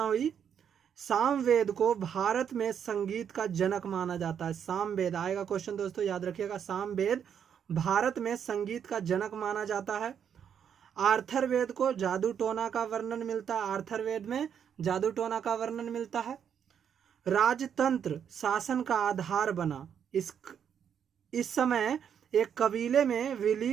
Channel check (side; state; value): left; quieter; 8.2 dB